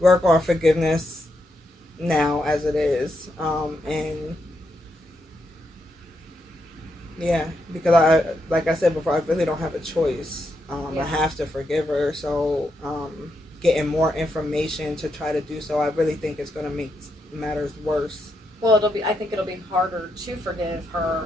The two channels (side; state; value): both; normal; correlation 0.82